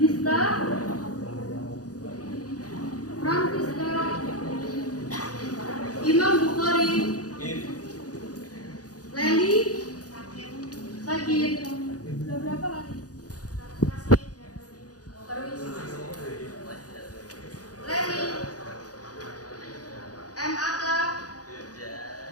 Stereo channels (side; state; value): right; late; 0.67 ms